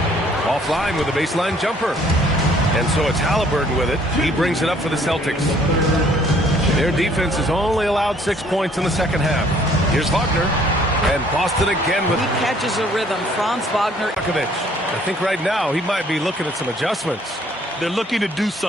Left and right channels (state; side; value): normal; both; correlation 0.60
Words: Offline with a baseline jumper. And so it's Halliburton with it. He brings it up for the Celtics. Their defense has only allowed 6 points in the second half. Here's Wagner. And Boston again with... He catches a rhythm. Franz Wagner. I think right now he might be looking at some adjustments. They're looking to do